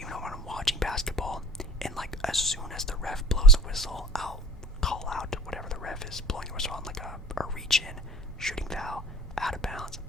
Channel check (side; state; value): both; normal; correlation 0.42